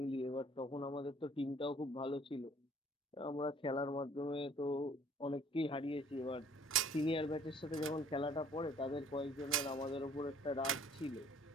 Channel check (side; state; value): both; normal; correlation 0.57